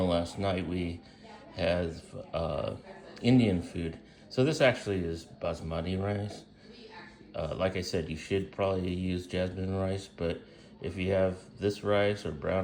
last night. We had Indian food. So this actually is basmati rice. Like I said, you should probably use jasmine rice, but if you have this rice or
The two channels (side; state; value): both; identical; correlation 1.00